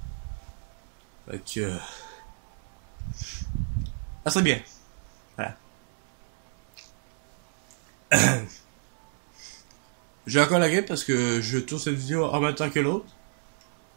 Fait que ça serait bien. Voilà. J'ai encore la game parce que je tourne cette vidéo en même temps que l'autre.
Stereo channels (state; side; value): silent; left; 58 dB below the other